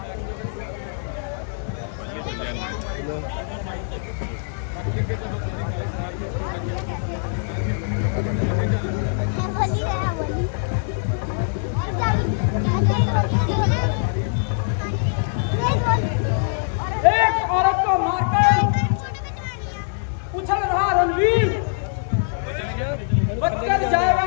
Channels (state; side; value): silent; right; digital silence